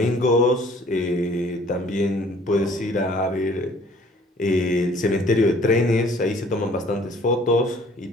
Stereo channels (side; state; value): both; normal; correlation 0.55